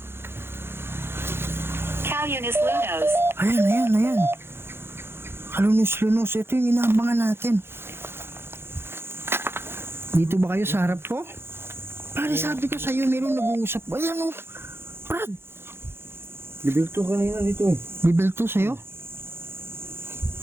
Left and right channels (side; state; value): left; late; 0.11 ms